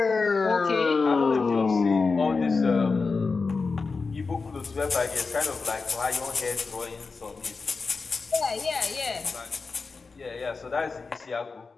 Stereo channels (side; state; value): right; quieter; 4.4 dB